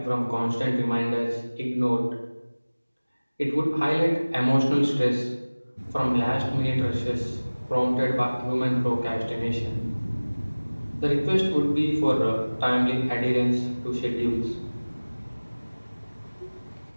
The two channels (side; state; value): both; inverted; correlation -1.00